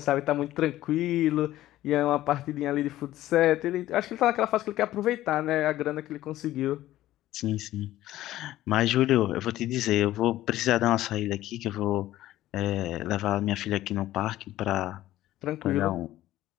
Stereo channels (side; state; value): right; quieter; 14.7 dB